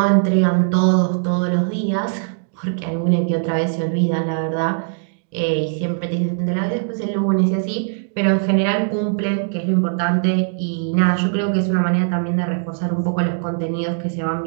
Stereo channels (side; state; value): left; silent; digital silence